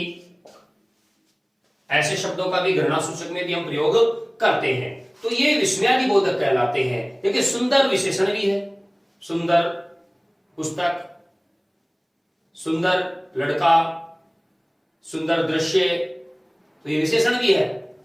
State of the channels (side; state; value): both; identical; correlation 1.00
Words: ऐसे शब्दों का भी घृणा सूचक में भी हम प्रयोग करते हैं। तो ये विस्मयादि बोधक कहलाते हैं। देखिए सुंदर विशेषण भी है, सुंदर पुस्तक, सुंदर लड़का, सुंदर दृश्य, तो ये विशेषण भी है।